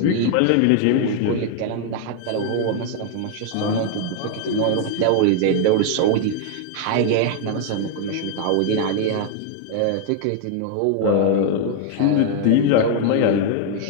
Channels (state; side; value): different; both; correlation 0.00